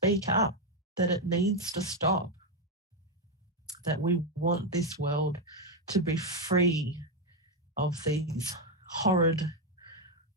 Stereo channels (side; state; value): both; normal; correlation 0.05